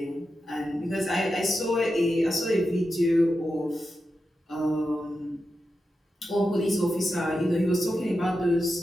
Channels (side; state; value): both; normal; correlation 0.89